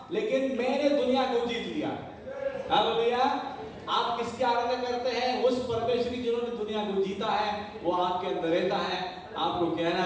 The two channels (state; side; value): identical; both; correlation 1.00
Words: लेकिन मैंने दुनिया को जीत लिया। हालेलुया। आप किसकी आराधना करते हैं? उस परमेश्वर की जिन्होंने दुनिया को जीता है, वो आपके अंदर रहता है। आपको कहना